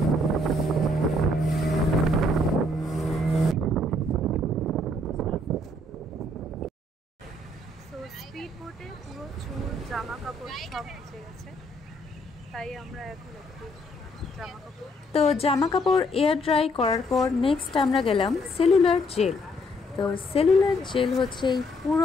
স্পিড বোটে পুরো চুল, জামা কাপড় সব ভিজে গেছে, তাই আমরা এখন একটু জামা কাপড় এয়ার ড্রাই করার পর নেক্সট আমরা গেলাম সেলুলার জেল। তো সেলুলার জেল হচ্ছে এই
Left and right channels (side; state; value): both; normal; correlation 0.69